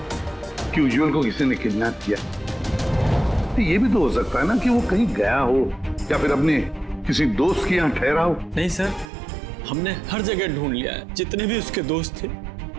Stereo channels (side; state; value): left; drops out; at 9.1 s